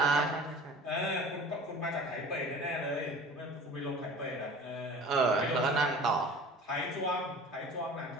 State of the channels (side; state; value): both; normal; correlation 0.42